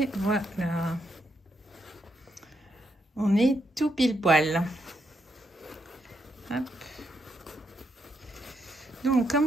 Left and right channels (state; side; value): normal; both; correlation 0.79